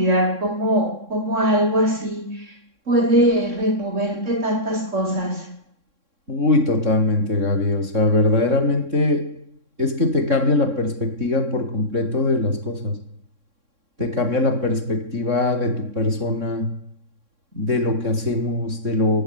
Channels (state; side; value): late; left; 3.6 ms